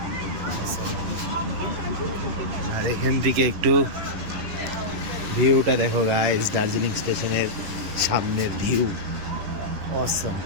আর এখান থেকে একটু ভিউটা দেখো গাইস, দার্জিলিং স্টেশনের সামনের ভিউ অসম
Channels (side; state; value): left; late; 11 ms